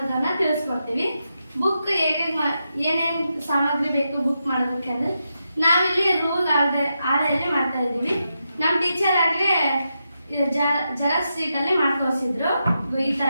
ತಿಳಿಸ್ಕೊಡ್ತೀವಿ. ಬುಕ್ ಹೇಗೆ ಏನೇನು ಸಾಮಗ್ರಿ ಬೇಕು ಬುಕ್ ಮಾಡೋದಕ್ಕೆ ಅಂದ್ರೆ ನಾವಿಲ್ಲಿ ರೂಲ್ ಆಳೆಯಲ್ಲಿ ಮಾಡ್ತಾ ಇದ್ದೀವಿ. ನಮ್ಮ ಟೀಚರ್ ಆಗ್ಲೇ ಜೆರಾಕ್ಸ್ ಶೀಟ್ ಅಲ್ಲಿ ಮಾಡ್ತೋರಿಸಿದ್ರು. ಈ ತರ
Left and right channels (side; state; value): both; inverted; correlation -0.86